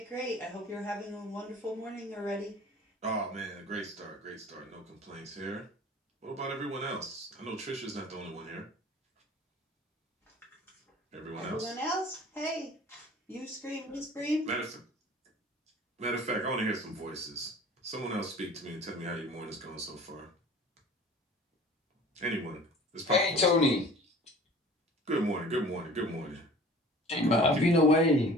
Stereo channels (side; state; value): both; normal; correlation 0.45